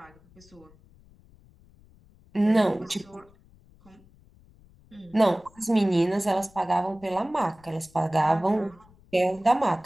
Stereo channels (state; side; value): noise; left; rumble, 28 dB below the sound